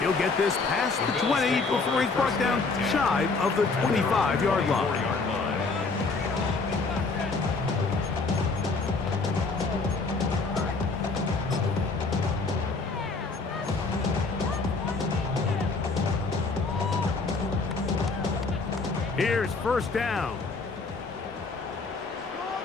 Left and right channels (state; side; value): quieter; right; 4.0 dB